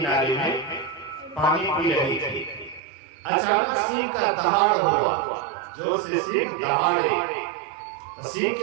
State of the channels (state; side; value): drops out; left; at 2.8 s